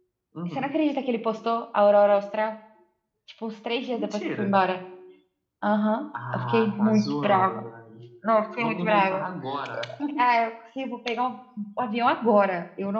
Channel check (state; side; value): identical; both; correlation 1.00